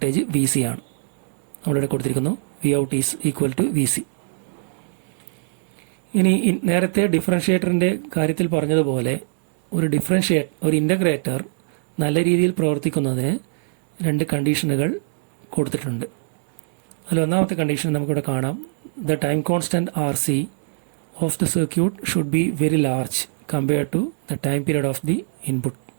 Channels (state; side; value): silent; left; digital silence